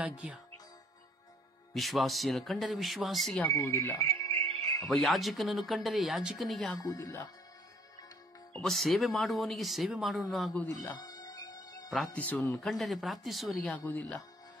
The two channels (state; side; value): normal; both; correlation 0.60